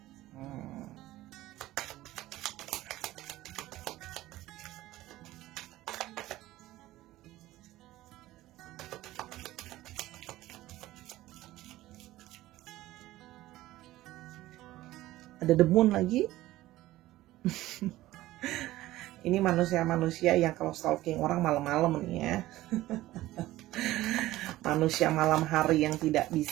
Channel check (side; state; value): left; quieter; 16.3 dB